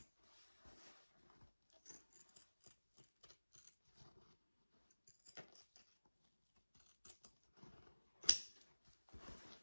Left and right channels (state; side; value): inverted; both; correlation -1.00